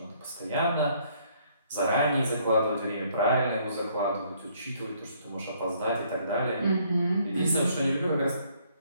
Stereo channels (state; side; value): inverted; both; correlation -0.65